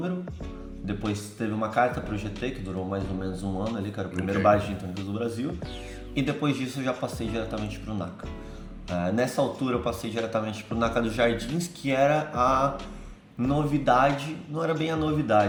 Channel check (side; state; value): both; identical; correlation 1.00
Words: depois teve uma carta pro GT, que durou mais ou menos um ano ali, que era o primeiro bar de gin tônicas do Brasil. E depois disso eu já passei diretamente pro NACA. Nessa altura eu passei diretamente pro NACA dos Jardins, que era a novidade, não era bem a